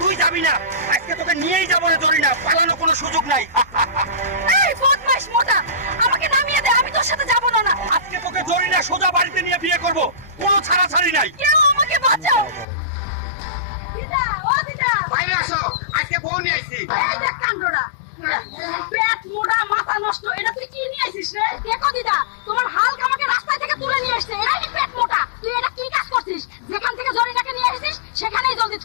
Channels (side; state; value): right; drops out; at 12.7 s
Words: যাবি না, আজকে তোকে নিয়েই যাবো রে জরিনা, পালানোর কোনো সুযোগ নাই। এই বদমাইশ মোটা, আমাকে নামিয়ে দে, আমি তোর সাথে যাব না। না, আজকে তোকে জরিনা সোজা বাড়িতে নিয়ে বিয়ে করব, কোনো ছাড়াছাড়ি নাই। কেউ আমাকে বাঁচাও। দিদা, ও দিদা, বাইরে আসো, আজকে বউ নিয়ে আইছি। এই দেখ কাণ্ডটা, পেট মোটা মাথা নষ্ট, এটা তুই কি নিয়ে আইছিস রে? দেখো দিদা, তোমার হালকা আমাকে রাস্তায় থেকে তুলে নিয়ে আসছে, এটাই পেট মোটা। তুই এটা কি কাজ করছিস? যেখান থেকে জরিনাকে নিয়ে আসিস সেখানেই জলদি